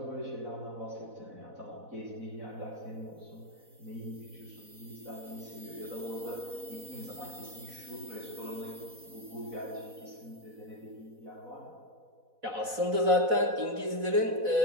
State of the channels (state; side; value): late; left; 4.0 ms